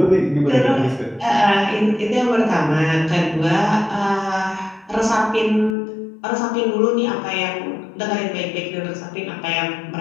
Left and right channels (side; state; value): right; drops out; at 5.8 s